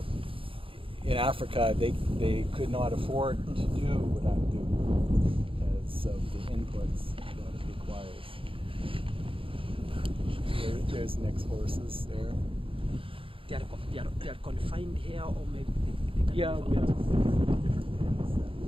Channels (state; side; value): late; left; 0.26 ms